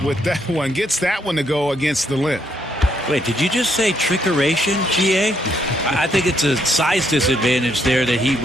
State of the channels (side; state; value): both; normal; correlation 0.74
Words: with that one. Gets that one to go against the limb. Wait, did you just say trickeration, GA? I think it's a size disadvantage there that he